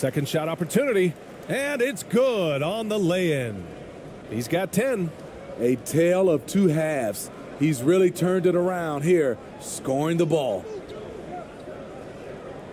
shot opportunity. And it's good on the lay-in. He's got 10. A tale of 2 halves. He's really turned it around here, scoring the ball.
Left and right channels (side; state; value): both; identical; correlation 1.00